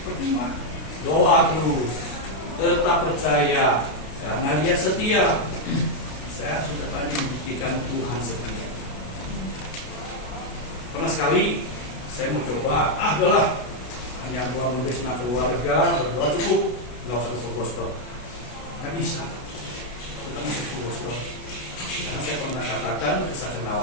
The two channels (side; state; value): right; late; 32 ms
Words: Percuma, doa terus, tetap percaya karena dia setia. Saya sudah banyak membuktikan Tuhan setia. Pernah sekali saya mau coba, adalah hanya buang membesna keluarga, berdoa cukup, nggak usah ke full gospel. Nggak bisa, kita mesti full gospel. Karena saya pernah katakan kesaksian